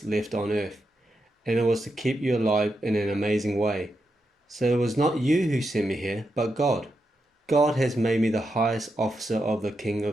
left on earth, and it was to keep you alive in an amazing way. So it was not you who sent me here, but God. God has made me the highest officer of the king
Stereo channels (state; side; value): normal; both; correlation 0.85